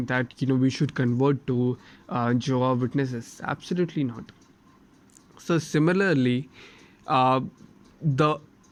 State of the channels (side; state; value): both; identical; correlation 1.00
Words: that we should convert to Jehovah Witnesses? Absolutely not. So similarly, uh, the